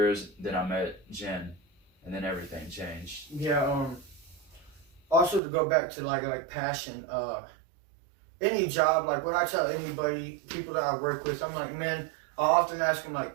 Then I met Jen. And then everything changed. Yeah, also to go back to like passion, any job, like what I tell anybody, people that I work with, I'm like, man, I often ask them,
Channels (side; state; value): left; drops out; at 5.4 s